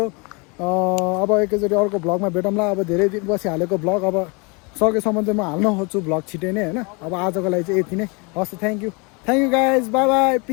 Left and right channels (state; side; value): quieter; right; 30.8 dB